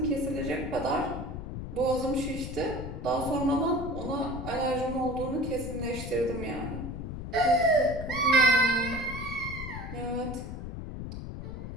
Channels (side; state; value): left; noise; rumble, 7 dB below the sound